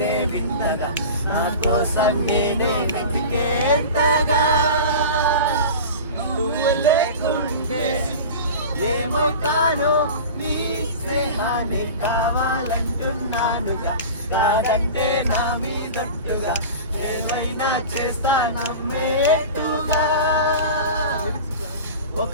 వింతగా, నా కోసం నేనే వెతికేంతగా. నువ్వు లేకుంటే ఏమవుతానో, నీ స్నేహాన్ని కావాలంటున్నానుగా. కాదంటే నా మీదట్టుగా ఏమైనా చేస్తా నమ్మేట్టుగా.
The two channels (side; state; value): both; inverted; correlation -0.33